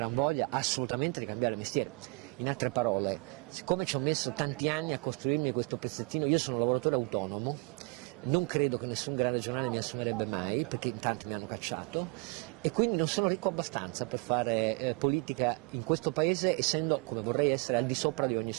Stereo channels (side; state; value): left; quieter; 29.4 dB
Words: voglia assolutamente di cambiare mestiere. In altre parole, siccome ci ho messo tanti anni a costruirmi questo pezzettino, io sono un lavoratore autonomo, non credo che nessun grande giornale mi assumerebbe mai, perché in tanti mi hanno cacciato, e quindi non sono ricco abbastanza per fare politica in questo paese, essendo, come vorrei essere, al di sopra di ogni